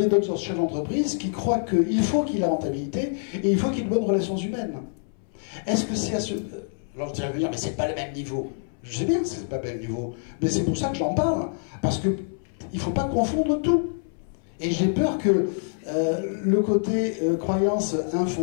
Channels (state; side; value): silent; right; 61 dB below the other